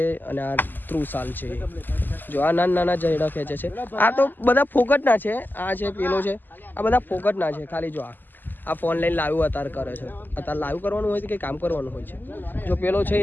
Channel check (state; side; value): late; right; 0.089 ms